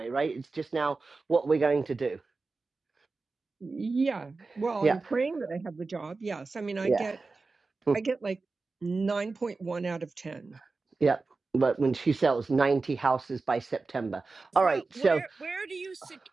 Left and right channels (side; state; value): left; quieter; 3.9 dB